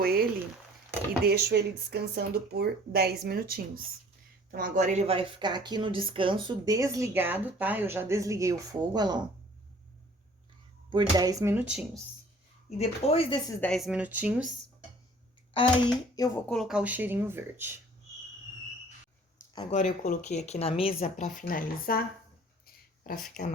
ele e deixo ele descansando por 10 minutinhos. Então, agora ele vai ficar aqui no descanso, desligado, tá? Eu já desliguei o fogo, olha lá, ó, por 10 minutinhos. E depois desses 10 minutinhos, aí eu vou colocar o cheirinho verde. Agora, eu coloquei aqui na mesa pra finalizar, pra ficar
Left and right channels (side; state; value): both; normal; correlation 0.52